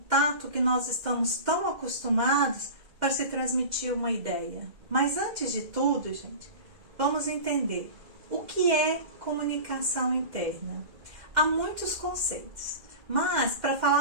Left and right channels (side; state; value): left; late; 2.1 ms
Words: que nós estamos tão acostumados para se transmitir uma ideia. Mas antes de tudo, gente, vamos entender o que é comunicação interna. Há muitos conceitos, mas para